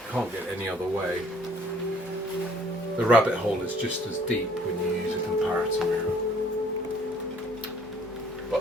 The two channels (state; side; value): noise; right; hum, 27 dB below the sound